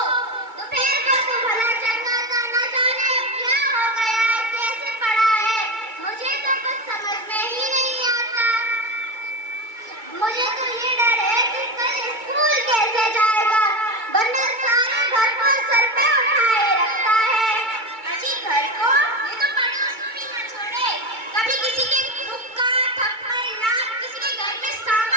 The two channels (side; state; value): left; late; 2.2 ms